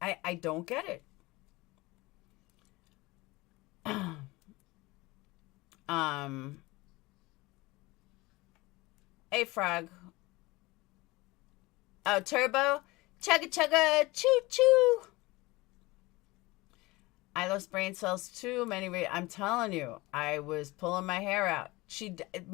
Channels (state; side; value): quieter; right; 21.9 dB